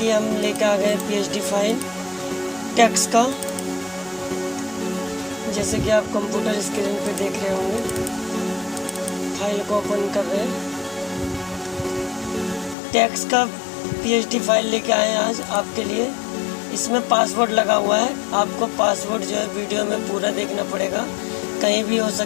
हम लेकर आ गए PhD फाइल टेक्स्ट का। जैसे कि आप कंप्यूटर स्क्रीन पे देख रहे होंगे, फाइल को ओपन कर रहे हैं। टेक्स्ट का PhD फाइल लेके आए हैं आज आपके लिए। इसमें पासवर्ड लगा हुआ है। आपको पासवर्ड जो है वीडियो में पूरा देखना पड़ेगा, कहीं भी हो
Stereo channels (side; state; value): right; drops out; at 12.8 s